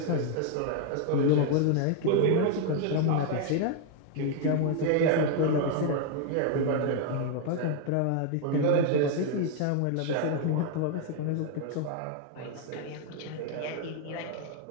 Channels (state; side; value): different; both; correlation 0.00